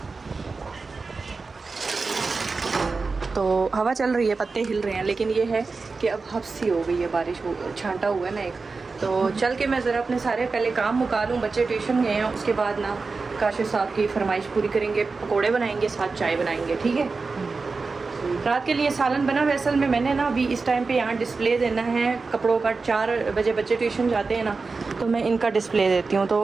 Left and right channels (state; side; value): quieter; left; 4.2 dB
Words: तो हवा चल रही है, पत्ते हिल रहे हैं, लेकिन ये है कि अब हफ्सी हो गई है, बारिश हो, छांटा हुआ है ना एक। तो चल के मैं ज़रा अपने सारे पहले काम मुका लूँ, बच्चे ट्यूशन गए हैं, उसके बाद ना काशिफ साहब की फरमाइश पूरी करेंगे, पकोड़े बनाएंगे, साथ चाय बनाएंगे, ठीक है। रात के लिए सालन बना हुआ है। असल में मैंने ना अभी इस टाइम पे यहाँ डिस्प्ले देना है कपड़ों का। 4 बजे बच्चे ट्यूशन जाते हैं ना, तो मैं इनका डिस्प्ले देती हूँ,